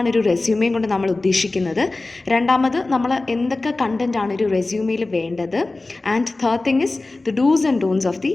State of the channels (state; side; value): quieter; right; 3.2 dB